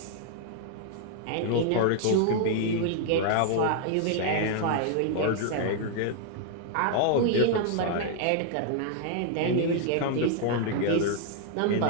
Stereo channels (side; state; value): both; different; correlation 0.00